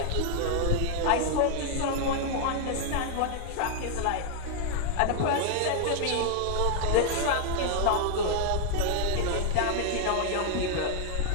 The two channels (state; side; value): different; both; correlation 0.00